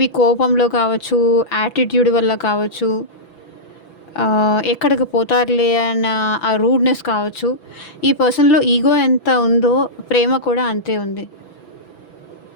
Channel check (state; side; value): late; right; 6.0 ms